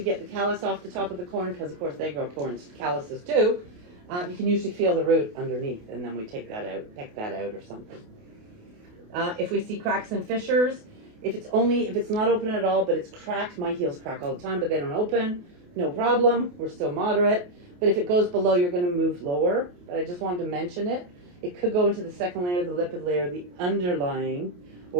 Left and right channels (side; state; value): left; late; 28 ms